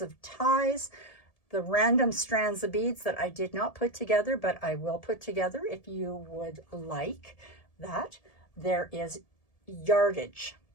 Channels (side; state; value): right; late; 1.7 ms